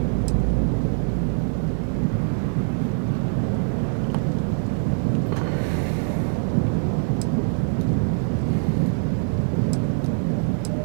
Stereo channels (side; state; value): left; silent; digital silence